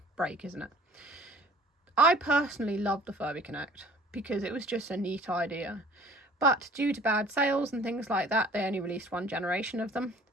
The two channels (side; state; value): both; normal; correlation 0.50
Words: break, isn't it? I personally loved the Furby Connect because it was just a neat idea. But due to bad sales and things like that, they only released one generation of them.